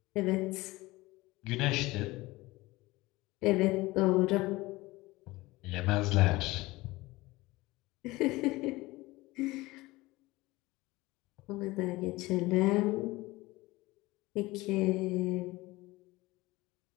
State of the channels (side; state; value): right; quieter; 20.4 dB